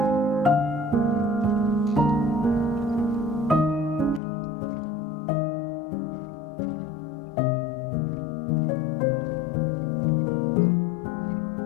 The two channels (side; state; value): right; drops out; at 4.2 s